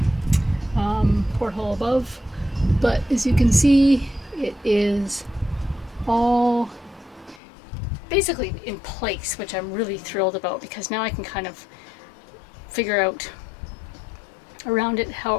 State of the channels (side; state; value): right; drops out; at 7.4 s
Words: porthole above, but as you can see, it is all basically in place, which I'm really thrilled about because now I can kind of figure out around it how